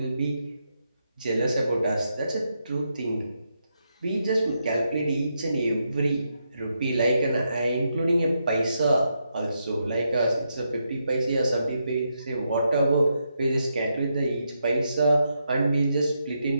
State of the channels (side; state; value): both; inverted; correlation -0.82